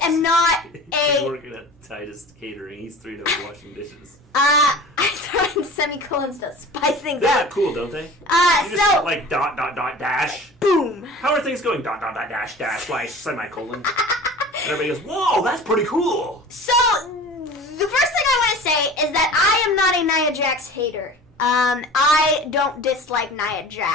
am not He's working at Titus Catering. He's 3 days washing dishes. I throw in semicolons to spice things They up. look cool, don't they? You So just like dot dot dot dash. boom. How are things going? Dot dot dot dash dash slash semicolon. And everybody goes, whoa, that's pretty cool. So the first thing I want to say is that I am not a Nia Jax hater. I don't dislike Nia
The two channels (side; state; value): both; normal; correlation 0.40